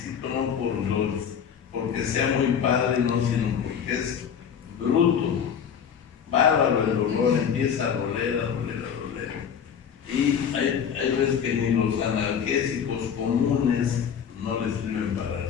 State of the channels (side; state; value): right; quieter; 7.7 dB